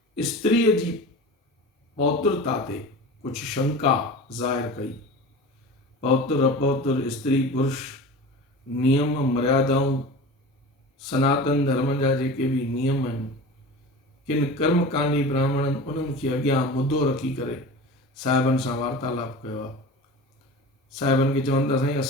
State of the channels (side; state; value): both; normal; correlation 0.34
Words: स्त्रीअ जी पौत्रता ते कुछ शंका ज़ाहिर कई। पौत्र अपौत्र, स्त्री पुरुष, नियम मर्यादाऊं, सनातन धर्म जा जेके भी नियम आहिनि, किन कर्मकांडी ब्राह्मणनि उन्हनि खे अॻियां मुद्दो रखी करे साहिबनि सां वार्तालाप कयो आहे। साहिबनि खे चवनि था साईं